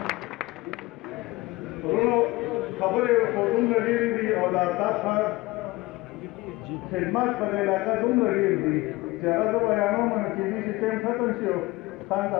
ورونو خبرې خو دومره ډېرې دي او د آفتاب خان خدمات په دې علاقه دومره ډېر دي چې هغه زه بیانوم نو کېدای شي ټایم ختم شي او خان ته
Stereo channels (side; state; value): right; quieter; 20.8 dB